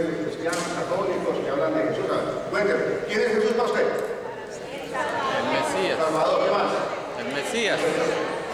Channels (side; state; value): both; identical; correlation 1.00